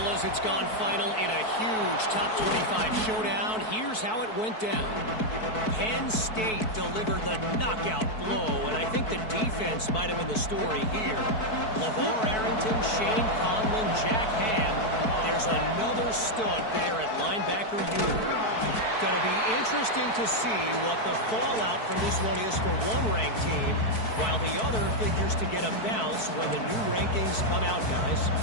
it's gone final in a huge top 25 showdown. Here's how it went down. Penn State delivered the knockout blow, and I think the defense might have been the story here. LeVar Arrington, Shane Conlon, Jack Ham. There's another stud there at linebacker unit. Going to be interesting to see what the fallout from this one is for one ranked team, while the other figures to get a bounce when the new rankings come out, guys.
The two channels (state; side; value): late; right; 4.6 ms